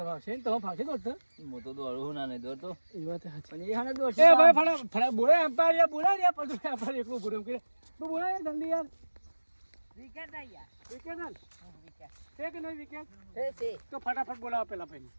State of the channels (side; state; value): both; inverted; correlation -1.00